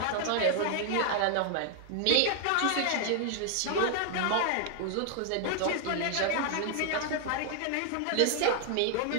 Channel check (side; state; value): both; different; correlation 0.00